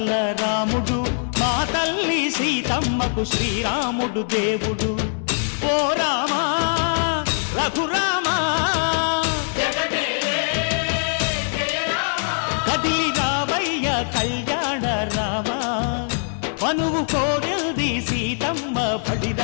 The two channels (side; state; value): right; silent; digital silence